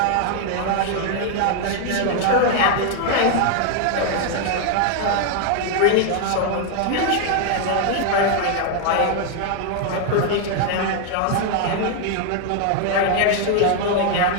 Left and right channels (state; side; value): different; both; correlation 0.00